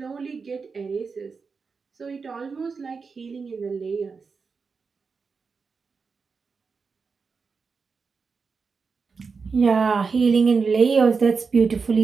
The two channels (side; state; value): left; quieter; 5.0 dB